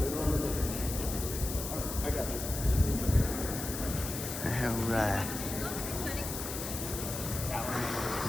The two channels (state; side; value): noise; left; hiss, 6 dB below the sound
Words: don't remember. All right, I got you. All right.